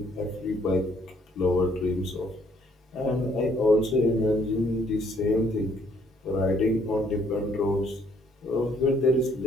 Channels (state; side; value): normal; both; correlation 0.65